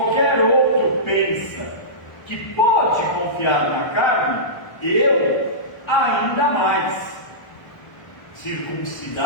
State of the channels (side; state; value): right; late; 1.2 ms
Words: outro pensa que pode confiar na carne, eu ainda mais.